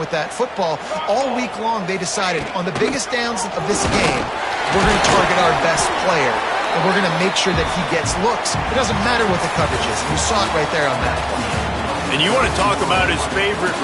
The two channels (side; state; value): both; identical; correlation 1.00